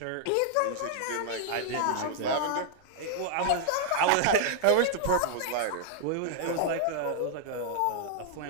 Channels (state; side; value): different; both; correlation 0.00